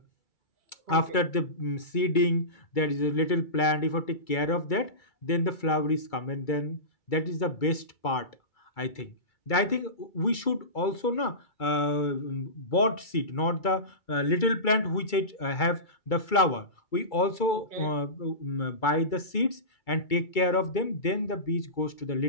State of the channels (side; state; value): right; late; 2.3 ms